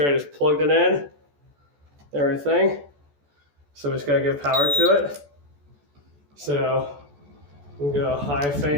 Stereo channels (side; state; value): left; late; 14 ms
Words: I just plugged it in, everything. So we just got to give power to it. So we go a high